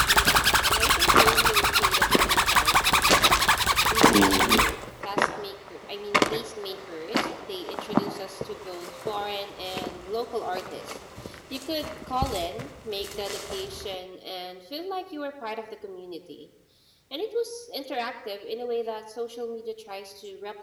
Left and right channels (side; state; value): both; identical; correlation 1.00